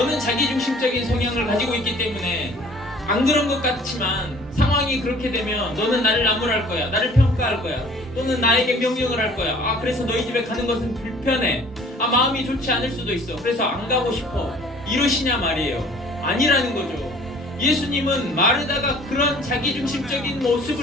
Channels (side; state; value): both; normal; correlation 0.52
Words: 자기중심적인 성향을 가지고 있기 때문에 안 그런 것 같지만 상황이 그렇게 되면 너는 나를 나무랄 거야, 나를 평가할 거야, 또는 나에게 명령을 할 거야. 그래서 너희 집에 가는 것은 불편해. 마음이 좋지 않을 수도 있어. 그래서 안 가고 싶어. 이러시냐 말이에요. 아니라는 거죠. 예수님은 마르다가 그런 자기중심적인